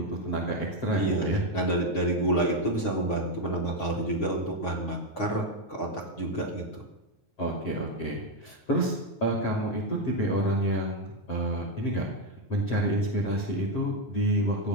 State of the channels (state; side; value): late; right; 9.4 ms